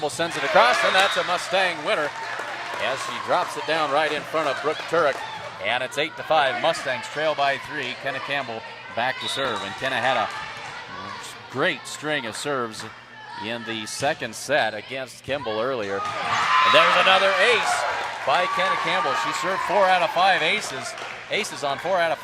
sends it across, and that's a Mustang winner as she drops it down right in front of Brooke Turek. And it's 8-5. Mustangs trail by 3. Kenna Campbell back to serve. And Kenna had a great string of serves in the second set against Kimball earlier. And there's another ace by Kenna Campbell. She served 4 out of 5 aces on 4 out of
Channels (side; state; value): both; identical; correlation 1.00